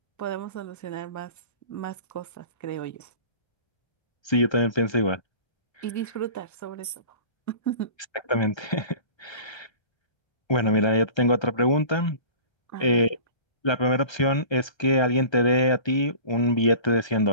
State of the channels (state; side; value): late; right; 1.3 ms